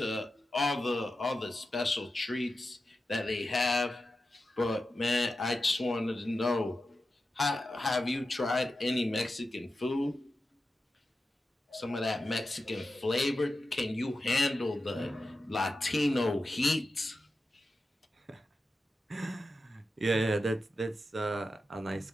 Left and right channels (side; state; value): both; normal; correlation 0.91